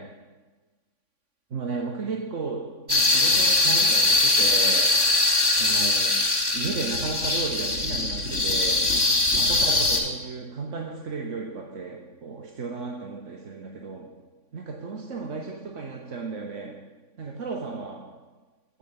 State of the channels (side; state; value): left; late; 3.5 ms